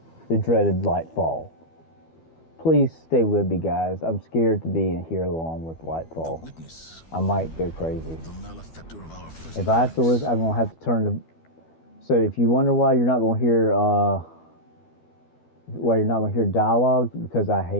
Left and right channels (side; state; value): right; late; 12 ms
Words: the dreaded Lightfall. Please stay with me, guys. I'm scared to be in here along with Lightfall. I might go crazy. If I have to listen, I'm going to have to turn the... So if you wonder why you're not going to hear dialogue, because I